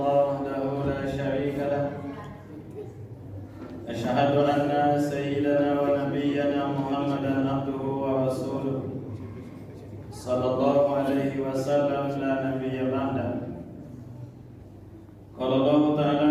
wahdahu la syarika lah. Asyhadu anna sayyidana wa nabiyyana Muhammadan abduhu wa rasuluh. Sallallahu alaihi wasallam la nabiyya ba'da. Qala Allah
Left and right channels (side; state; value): both; identical; correlation 1.00